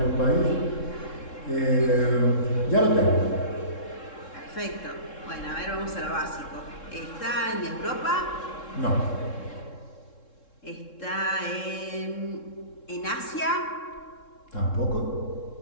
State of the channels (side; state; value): right; late; 3.7 ms